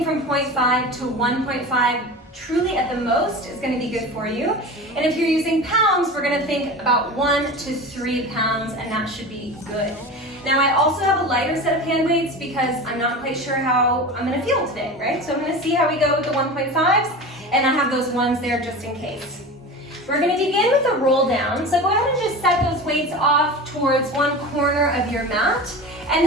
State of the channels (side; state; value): both; normal; correlation 0.31